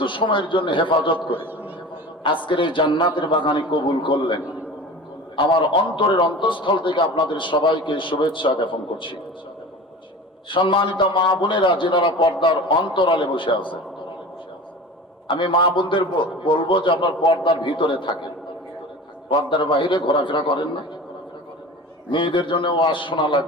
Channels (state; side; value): normal; both; correlation 0.36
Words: সময়ের জন্য হেফাজত করে আজকের এই জান্নাতের বাগানে কবুল করলেন, আমার অন্তরের অন্তঃস্থল থেকে আপনাদের সবাইকে শুভেচ্ছা জ্ঞাপন করছি। সম্মানিত মা বোনেরা, যেনারা পর্দার অন্তরালে বসে আছে, আমি মা বোনদের বলবো যে আপনার পর্দার ভিতরে থাকেন, পর্দার বাইরে ঘোরাফেরা করেন না। মেয়েদের জন্য ওয়াজ শোনা